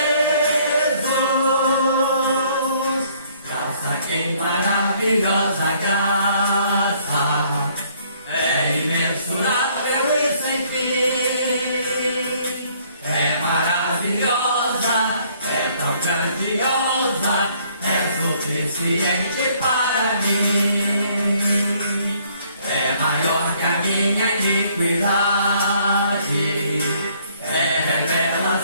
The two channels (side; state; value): both; inverted; correlation -0.63